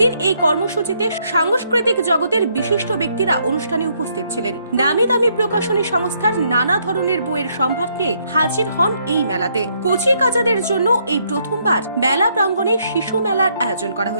এই কর্মসূচিতে সাংস্কৃতিক জগতের বিশিষ্ট ব্যক্তিরা অনুষ্ঠানে উপস্থিত ছিলেন। নামি দামি প্রকাশনী সংস্থার নানা ধরনের বইয়ের সম্ভার নিয়ে হাজির হন এই মেলাতে। কচি কাচাদের জন্য এই প্রথমবার মেলা প্রাঙ্গণে শিশু মেলার আয়োজন করা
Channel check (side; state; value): both; inverted; correlation -0.72